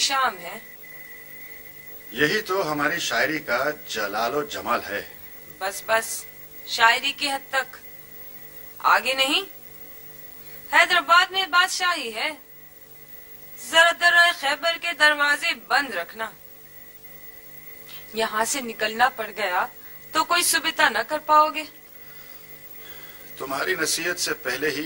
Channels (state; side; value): identical; both; correlation 1.00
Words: है। यही तो हमारी शायरी का जलालो जमाल है। बस बस, शायरी की हद तक, आगे नहीं। हैदराबाद में बादशाही है, जरा दर्राए खैबर के दरवाजे बंद रखना। यहाँ से निकलना पड़ गया तो कोई सुविधा न कर पाओगे। तुम्हारी नसीहत से पहले